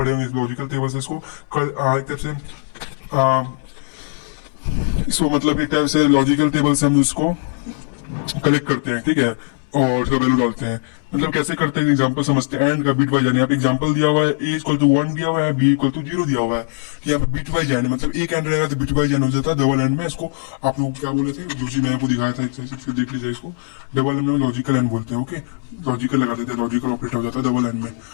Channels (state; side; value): silent; right; digital silence